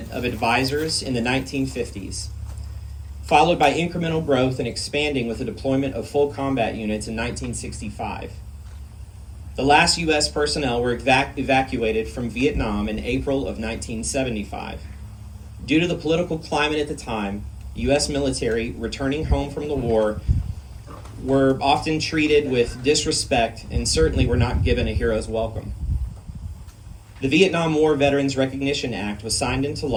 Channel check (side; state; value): both; identical; correlation 1.00